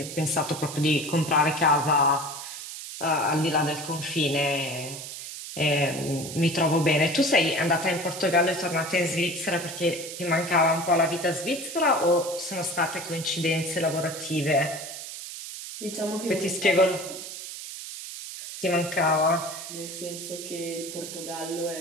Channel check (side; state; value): right; noise; hiss, 10 dB below the sound